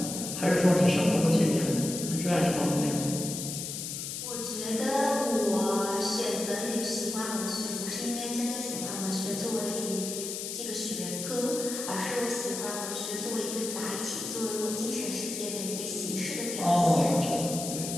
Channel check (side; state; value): left; noise; hiss, 5 dB below the sound